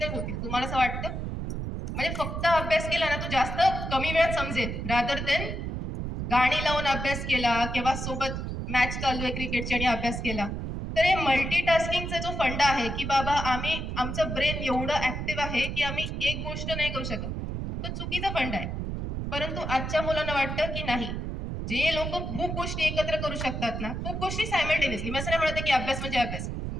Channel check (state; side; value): noise; right; rumble, 4 dB below the sound